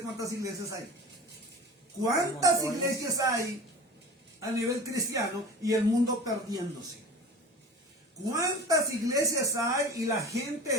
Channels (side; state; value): both; normal; correlation 0.36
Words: cuántas iglesias hay. ¿Cuántas iglesias hay a nivel cristiano y el mundo perdiéndose? ¿Cuántas iglesias hay y la gente